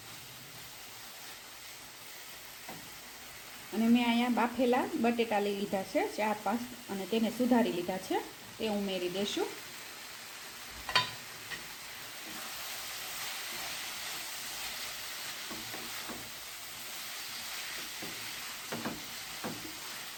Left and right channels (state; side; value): identical; both; correlation 1.00